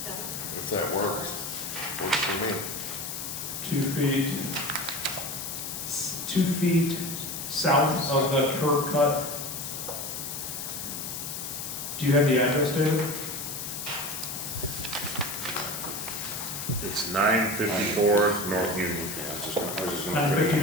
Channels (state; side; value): noise; left; hiss, 6 dB below the sound